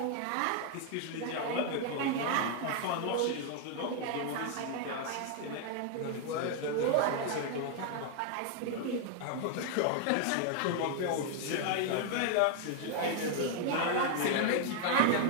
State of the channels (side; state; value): both; different; correlation 0.00